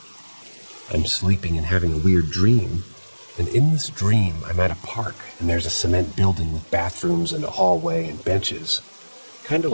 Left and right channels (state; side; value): inverted; both; correlation -1.00